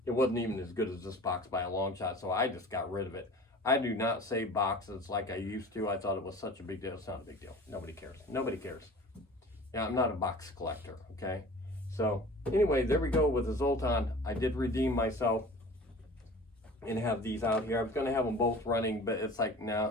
It wasn't even as good as this box by a long shot, so I just got rid of it. I do not save boxes like I used to. I thought it was such a big deal. It's not a big deal. Nobody cares. Nobody cares. Yeah, I'm not a box collector, okay? So, anyway, there we go with the Zoltan. I did redeem myself and have these out here. I was going to have them both running, but it's like,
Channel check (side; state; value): both; normal; correlation 0.42